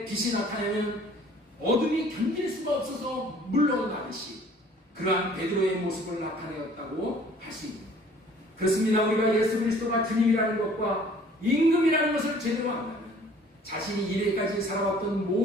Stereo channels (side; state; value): both; normal; correlation 0.54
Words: 빛이 나타나면 어둠이 견딜 수가 없어서 물러나듯이 그러한 베드로의 모습을 나타내었다고 할 수 있습니다. 그렇습니다. 우리가 예수 그리스도가 주님이라는 것과 임금이라는 것을 제대로 안다면 자신이 이래까지 살아왔던